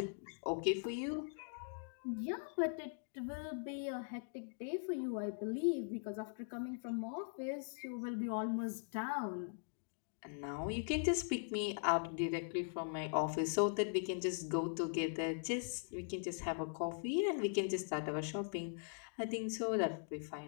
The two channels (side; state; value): right; silent; digital silence